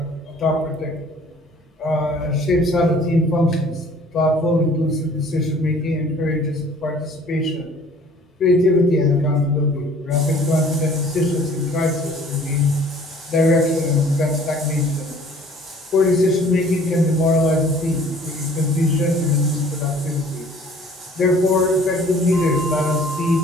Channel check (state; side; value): normal; both; correlation 0.53